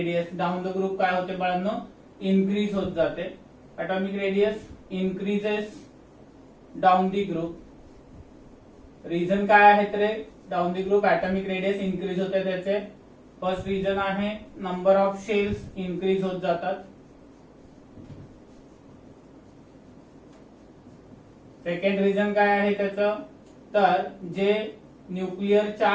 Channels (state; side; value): identical; both; correlation 1.00